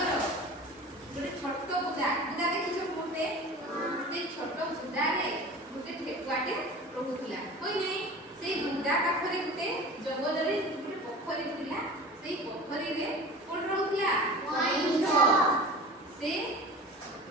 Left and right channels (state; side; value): normal; both; correlation 0.37